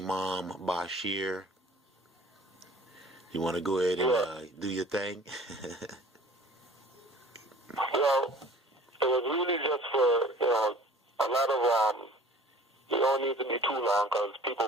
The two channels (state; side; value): normal; both; correlation 0.47